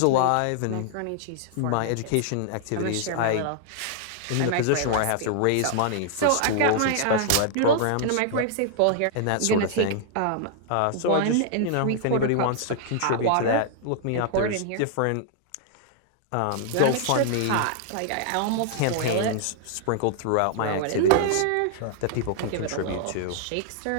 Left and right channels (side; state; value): both; different; correlation -0.01